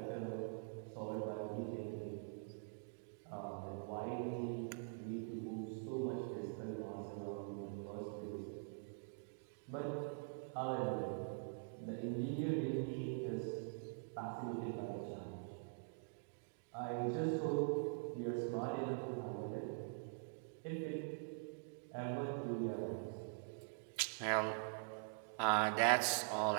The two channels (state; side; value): silent; left; digital silence